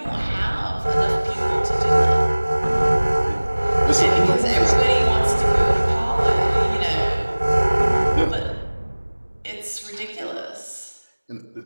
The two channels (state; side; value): inverted; both; correlation -1.00